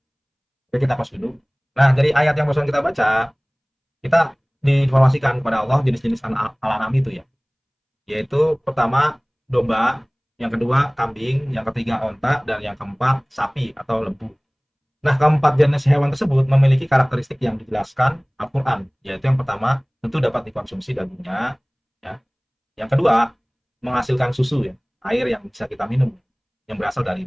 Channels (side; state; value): both; identical; correlation 1.00